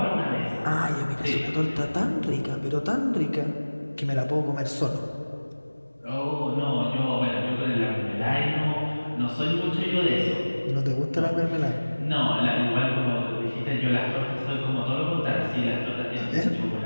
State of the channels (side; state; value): both; inverted; correlation -1.00